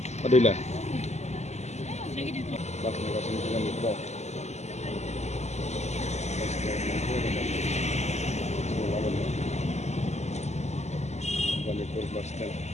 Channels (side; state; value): right; late; 0.33 ms